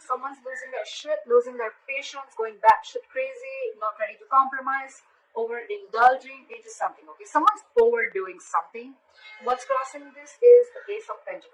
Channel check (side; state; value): both; identical; correlation 1.00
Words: someone's losing their shit, losing their patience, going batshit crazy, not ready to compromise, overindulging into something, okay? Someone's overdoing something. What's crossing this is the Ace of